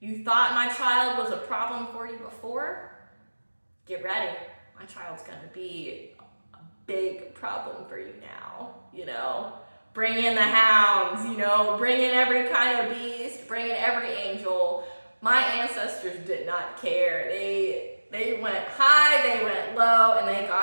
thought my child was a problem for you before? Get ready. My child's gonna be a big problem for you now, Bring in the hounds, bring in every kind of beast, bring in every angel. My ancestors did not care. They went high, they went low, and they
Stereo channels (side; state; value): both; inverted; correlation -1.00